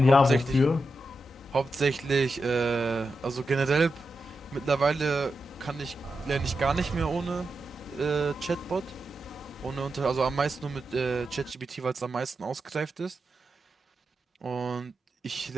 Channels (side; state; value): both; normal; correlation 0.88